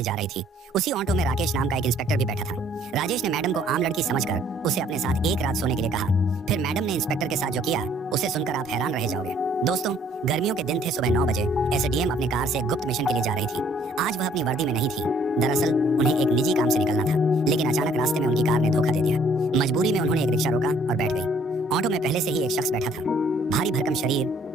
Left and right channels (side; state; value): both; normal; correlation 0.61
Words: जा रही थी। उसी ऑटो में राकेश नाम का एक इंस्पेक्टर भी बैठा था। राजेश ने मैडम को आम लड़की समझकर उसे अपने साथ एक रात सोने के लिए कहा। फिर मैडम ने इंस्पेक्टर के साथ जो किया उसे सुनकर आप हैरान रह जाओगे। दोस्तों, गर्मियों के दिन थे। सुबह 9 बजे एसडीएम अपने कार से गुप्त मिशन के लिए जा रही थी। आज वह अपनी वर्दी में नहीं थी। दरअसल उन्हें एक निजी काम से निकलना था, लेकिन अचानक रास्ते में उनकी कार ने धोखा दे दिया। मजबूरी में उन्होंने एक रिक्शा रोका और बैठ गई। ऑटो में पहले से ही एक शख्स बैठा था। भारी भरकम शरीर,